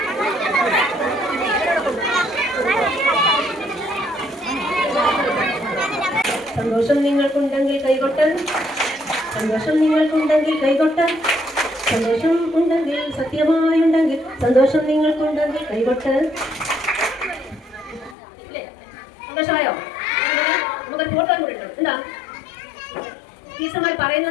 സന്തോഷം നിങ്ങൾക്കുണ്ടെങ്കിൽ കൈകൊട്ട്, സന്തോഷം നിങ്ങൾക്കുണ്ടെങ്കിൽ കൈകൊട്ട്, സന്തോഷം ഉണ്ടെങ്കിൽ സത്യമായുണ്ടെങ്കിൽ സന്തോഷം നിങ്ങൾക്കുണ്ടെങ്കിൽ കൈകൊട്ട്. സന്തോഷമായോ? നമുക്ക് ഫോട്ടോ കൂടെ ഉണ്ട്. എന്താ ടീച്ചർമാർ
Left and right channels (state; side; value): drops out; right; at 18.2 s